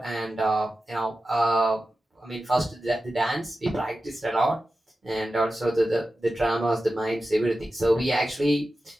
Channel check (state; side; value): normal; both; correlation 0.93